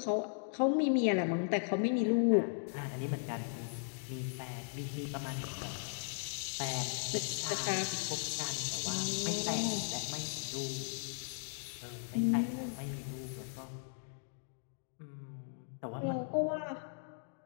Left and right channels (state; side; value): silent; right; digital silence